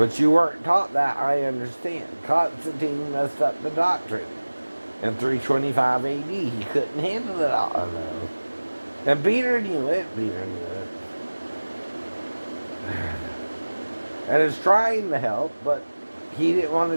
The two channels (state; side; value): inverted; both; correlation -1.00